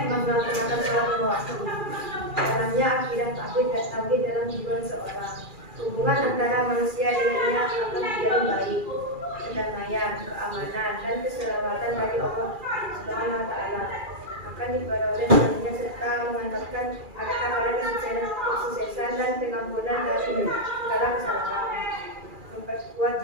melaksanakan salat lima waktu? Caranya akidah takbir dalam jiwa seorang. Hubungan antara manusia dengannya akan menjadi baik. Kedamaian, keamanan, dan keselamatan dari Allah Subhanahu wa taala akan diperoleh darinya, serta mengantarkan mereka pada kesuksesan dan pengampunan dari segala kesalahan. Memperkuat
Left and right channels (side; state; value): left; late; 2.4 ms